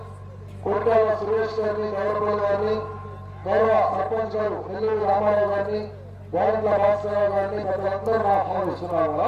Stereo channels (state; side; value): identical; both; correlation 1.00